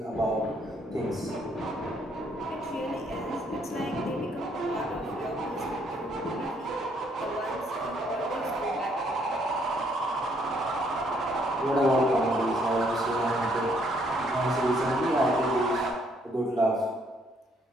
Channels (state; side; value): normal; both; correlation 0.68